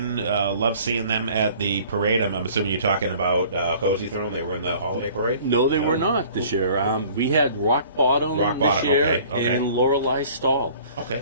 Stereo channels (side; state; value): both; inverted; correlation -0.51